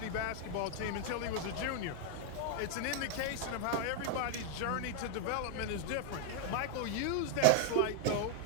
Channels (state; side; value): different; both; correlation 0.00